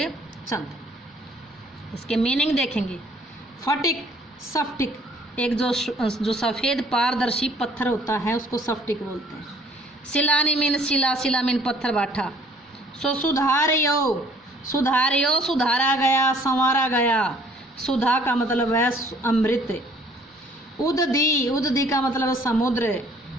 चंद। इसके मीनिंग देखेंगे। फटिक सफ्टिक, एक जो सफ़ेद पारदर्शी पत्थर होता है उसको सफ्टिक बोलते हैं। सिलानी मीन शिला, शिला मीन पत्थर बाठा। सो सुधारियो, सुधारियो सुधारा गया, संवारा गया। सुधा का मतलब है अमृत। उददी, उददी का मतलब है समुद्र।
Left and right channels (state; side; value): normal; both; correlation 0.58